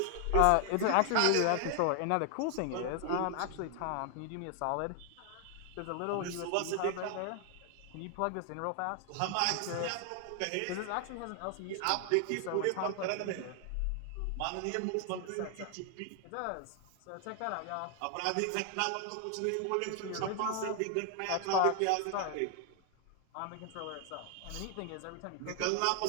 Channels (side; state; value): both; different; correlation 0.00